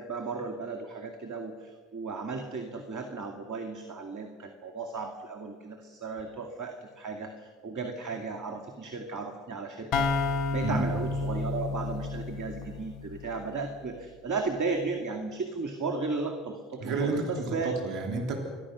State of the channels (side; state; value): both; normal; correlation 0.34